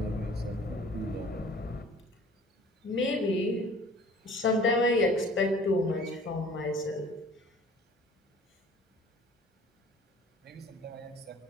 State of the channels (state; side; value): normal; both; correlation 0.49